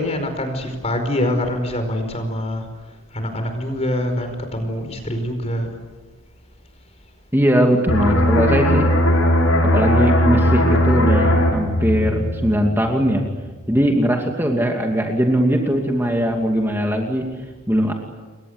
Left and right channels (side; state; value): both; normal; correlation 0.70